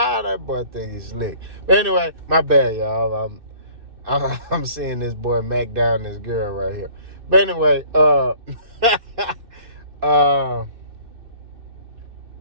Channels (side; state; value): left; late; 2.6 ms